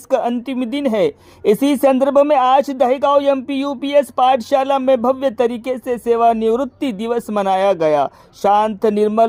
का अंतिम दिन है। इसी संदर्भ में आज दहेगांव एमपी यूपीएस पाठशाला में भव्य तरीके से सेवानिवृत्ति दिवस मनाया गया। शांत,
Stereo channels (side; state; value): both; identical; correlation 1.00